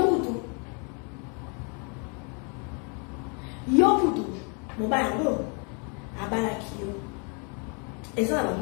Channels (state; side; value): quieter; right; 36.4 dB